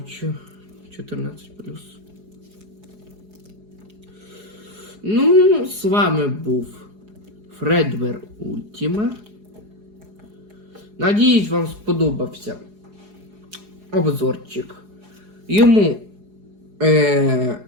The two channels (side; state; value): left; late; 4.8 ms